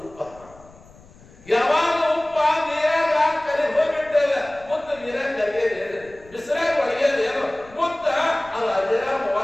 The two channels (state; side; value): noise; left; rumble, 24 dB below the sound